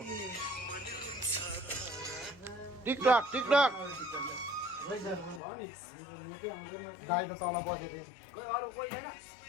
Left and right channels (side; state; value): right; drops out; at 5.4 s